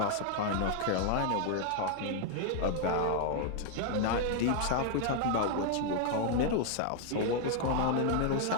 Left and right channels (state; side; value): different; both; correlation 0.00